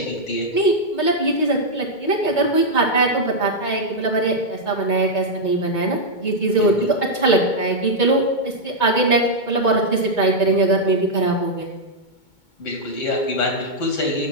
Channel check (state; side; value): late; right; 2.2 ms